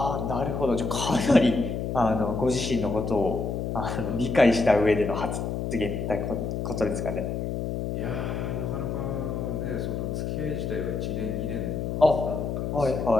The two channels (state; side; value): noise; left; hum, 2 dB below the sound